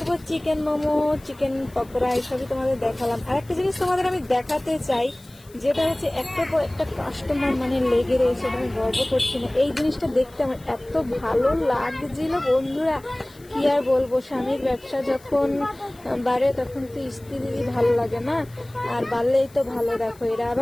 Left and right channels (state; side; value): noise; left; hiss, 26 dB below the sound